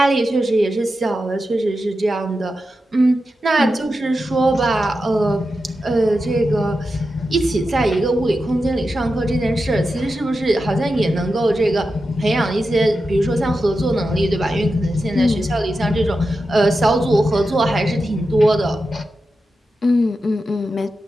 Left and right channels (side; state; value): both; normal; correlation 0.90